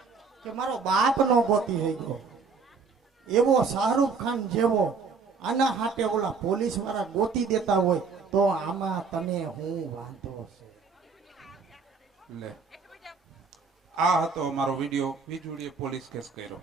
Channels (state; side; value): quieter; left; 4.9 dB